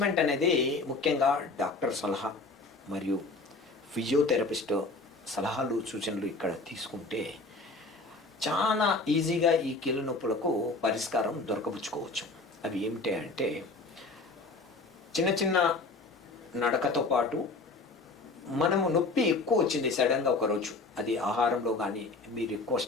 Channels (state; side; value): quieter; right; 3.4 dB